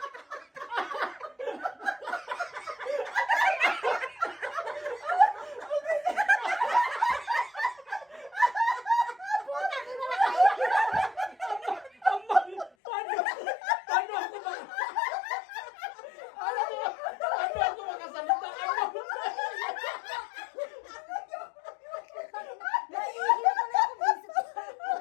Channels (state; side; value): drops out; right; at 12.7 s